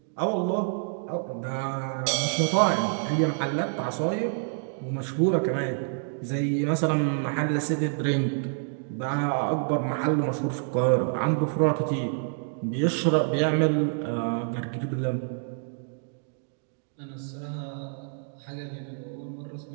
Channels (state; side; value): silent; left; digital silence